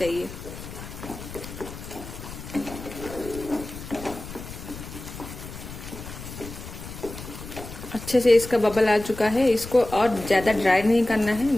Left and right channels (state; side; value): noise; left; rumble, 12 dB below the sound